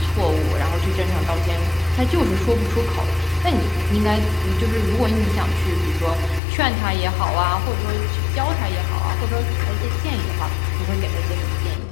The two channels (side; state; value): right; drops out; at 6.4 s